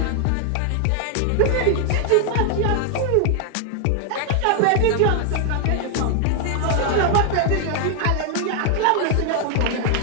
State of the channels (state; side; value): different; both; correlation 0.00